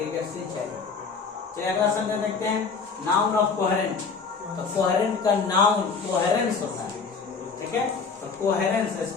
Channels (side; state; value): right; quieter; 5.1 dB